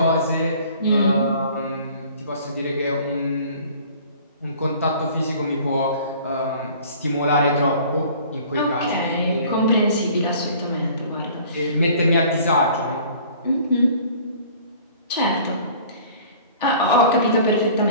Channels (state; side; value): inverted; both; correlation -0.50